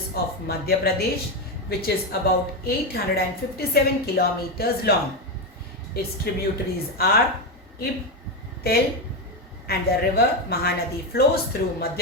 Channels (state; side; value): normal; both; correlation 0.11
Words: of Madhya Pradesh, which is about 857 kilometers long. Its tributaries are Ib, Tel, and the river Mahanadi flows through